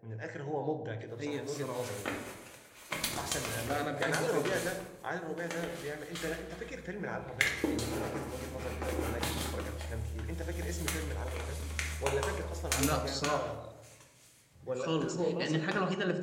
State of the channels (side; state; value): both; identical; correlation 1.00